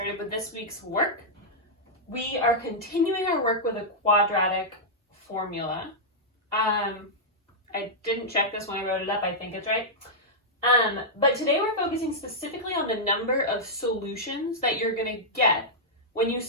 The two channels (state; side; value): normal; both; correlation -0.08